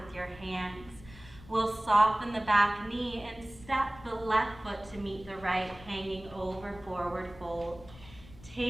your hands. We'll soften the back knee and step the left foot to meet the right, hanging over forward fold.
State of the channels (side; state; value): left; noise; rumble, 19 dB below the sound